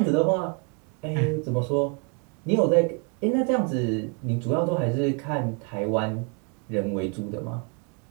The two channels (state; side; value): quieter; left; 36.1 dB